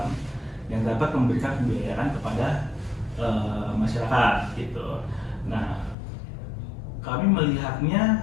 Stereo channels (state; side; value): drops out; right; at 6.0 s